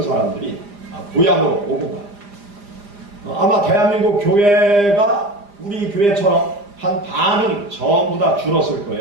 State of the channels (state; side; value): late; left; 4.9 ms